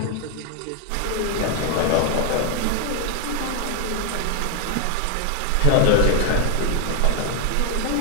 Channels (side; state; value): both; different; correlation 0.00